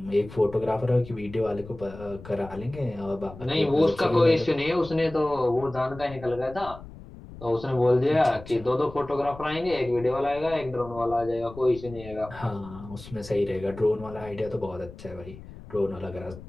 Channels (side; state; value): left; noise; rumble, 16 dB below the sound